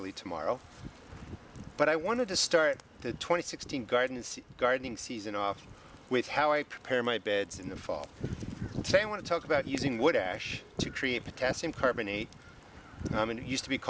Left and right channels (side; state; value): both; identical; correlation 1.00